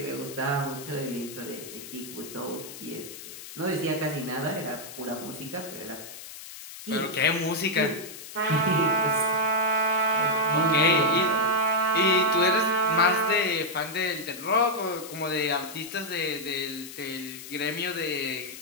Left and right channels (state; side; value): noise; left; hiss, 13 dB below the sound